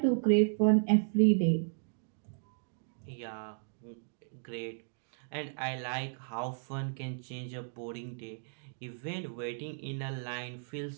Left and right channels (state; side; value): silent; left; digital silence